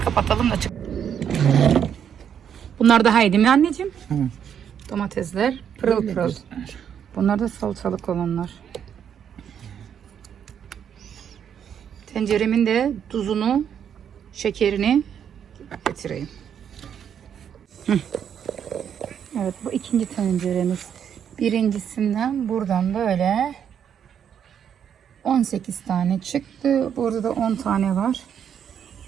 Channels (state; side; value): quieter; left; 8.5 dB